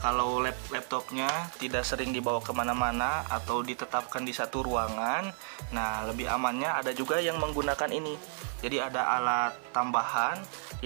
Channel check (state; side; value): silent; left; digital silence